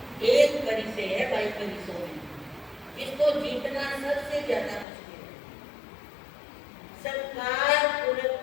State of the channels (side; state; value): right; drops out; at 4.9 s